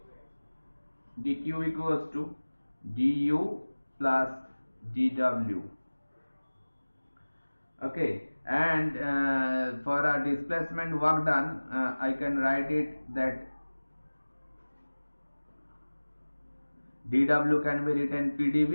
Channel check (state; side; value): inverted; both; correlation -1.00